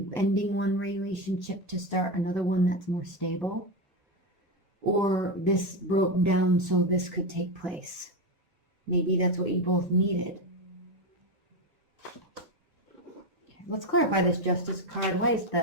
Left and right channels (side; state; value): both; normal; correlation 0.13